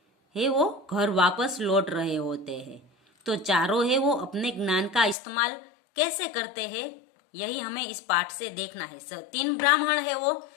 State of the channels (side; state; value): right; drops out; at 5.2 s